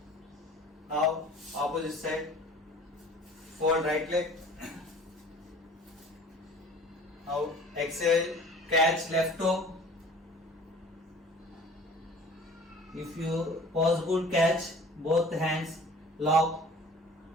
Now opposite side. Fold right leg. Now exhale, catch left toe. If you possible, catch both hands, lock,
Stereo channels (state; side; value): normal; both; correlation 0.46